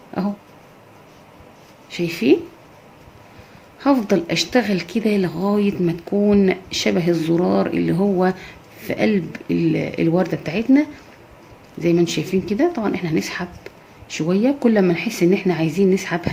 اهو. شايفين؟ هفضل اشتغل كده لغاية ما تكون شبه الزرار اللي هو في قلب الوردة بتاعتنا زي ما انتم شايفين كده. طبعا احنا هنسحب شوية، كل ما نحس ان احنا عايزين نسحب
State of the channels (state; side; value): identical; both; correlation 1.00